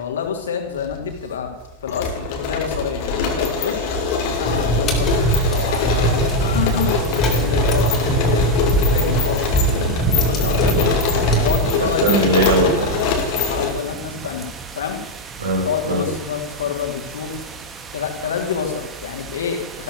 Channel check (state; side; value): normal; both; correlation 0.01